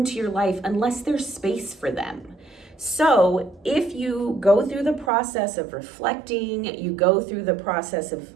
your life unless there's space for them. So if you go through the process of reflecting, you go through the process of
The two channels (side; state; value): left; drops out; at 5.1 s